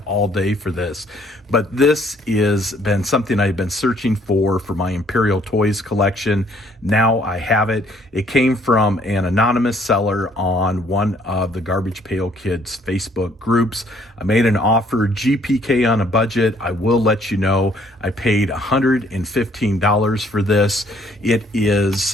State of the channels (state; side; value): normal; both; correlation 0.63